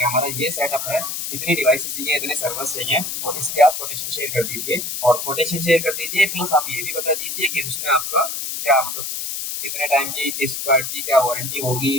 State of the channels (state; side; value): noise; left; hiss, 4 dB below the sound